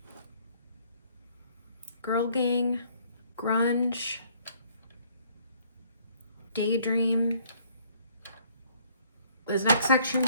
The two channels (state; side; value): inverted; both; correlation -0.62